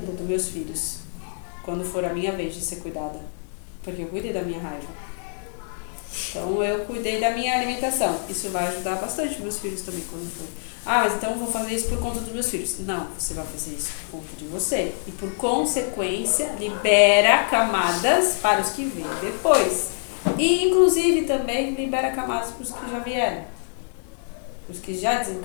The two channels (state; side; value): silent; right; digital silence